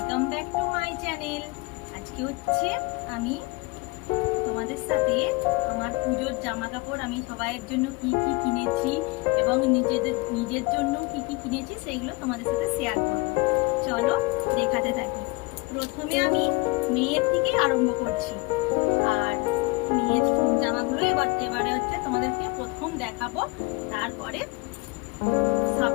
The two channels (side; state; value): right; quieter; 25.0 dB